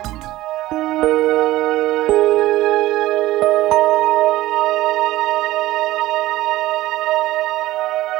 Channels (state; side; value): quieter; left; 16.5 dB